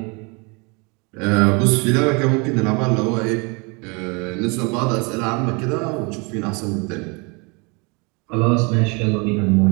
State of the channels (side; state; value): left; quieter; 30.2 dB